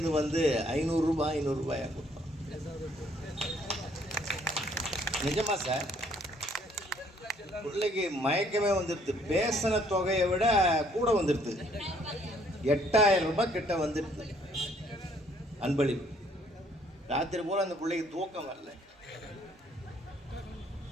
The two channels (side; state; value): both; normal; correlation 0.64